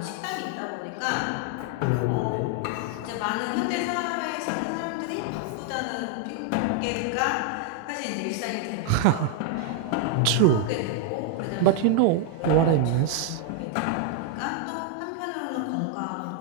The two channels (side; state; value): both; different; correlation 0.00